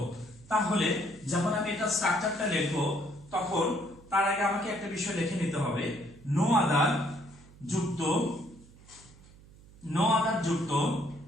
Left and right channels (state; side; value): noise; right; hum, 23 dB below the sound